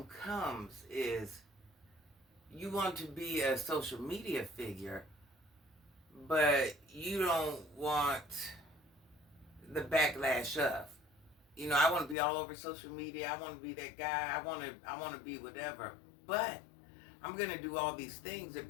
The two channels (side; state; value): right; drops out; at 12.2 s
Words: comes is you want to be a social media figure, but you don't want the backlash of. I want to be all over social media. I want to be that guy. I want to be whatever. But I'm going to do all these things that